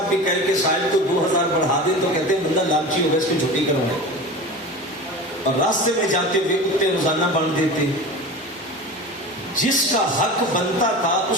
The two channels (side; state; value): both; normal; correlation 0.32